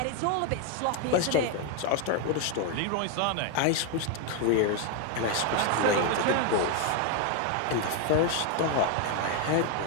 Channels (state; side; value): different; both; correlation 0.01